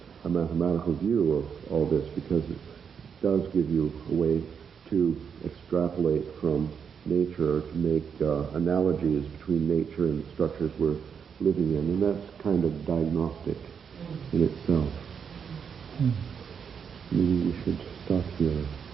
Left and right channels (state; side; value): quieter; left; 6.9 dB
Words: a mathematical view of all this, because it does give you a way to extrapolate from nature, to make analogies between nature and the structures we're living in, and that's kind of diagnostic in itself. Maybe we should stop here.